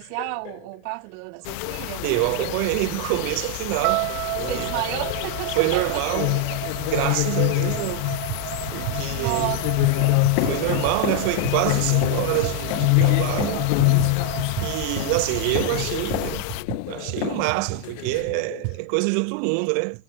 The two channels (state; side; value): different; both; correlation 0.00